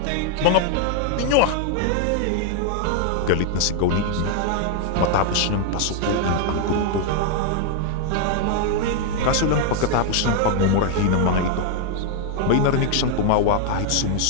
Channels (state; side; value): different; both; correlation 0.00